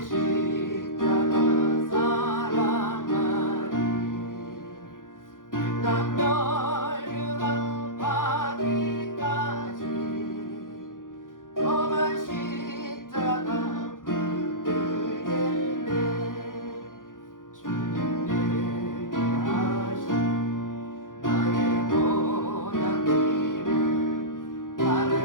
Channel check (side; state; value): right; late; 0.90 ms